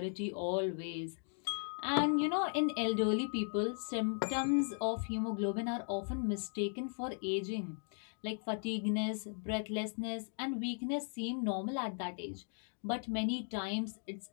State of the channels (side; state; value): right; silent; 53 dB below the other